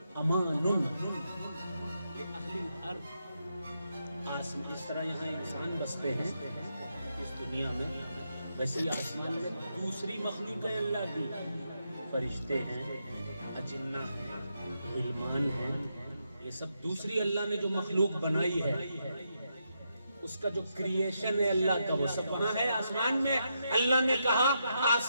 أَمَانٌ لِأَهْلِ الْأَرْضِ۔ اس طرح یہاں انسان بستے ہیں اس دنیا میں، ویسے ہی آسمان میں دوسری مخلوق ہے اللہ کی، فرشتے ہیں، اجنہ ہیں، غلمان ہیں، یہ سب دوسری اللہ نے جو مخلوق بنائی ہے، اس کا جو کریشن ہے اللہ کا، وہ سب وہاں ہے آسمان میں۔ اللہ نے کہا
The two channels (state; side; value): inverted; both; correlation -0.82